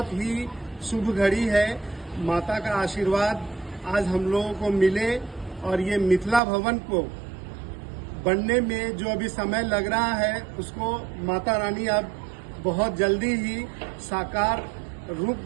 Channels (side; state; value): left; drops out; at 6.4 s